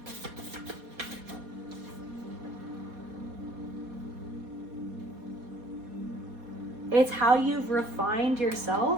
it's how you've refined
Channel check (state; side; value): late; left; 4.2 ms